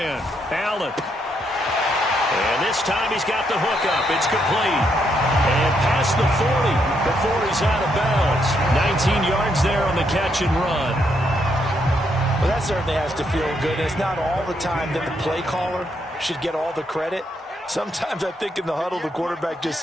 Allen. And this time he's got the hook up. It's complete. And past the 40 before he's out of bounds. 19 yards there on the catch and run. Well, that certainly has to feel good. It's not all the time that the play caller should get all the credit. Sometimes I think in the huddle the quarterback just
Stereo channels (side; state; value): both; normal; correlation 0.76